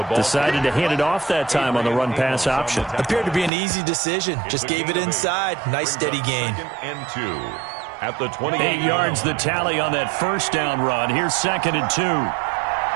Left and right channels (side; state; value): left; drops out; at 3.5 s